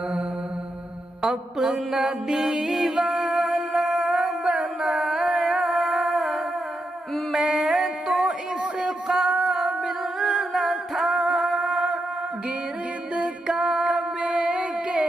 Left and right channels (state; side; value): normal; both; correlation 0.84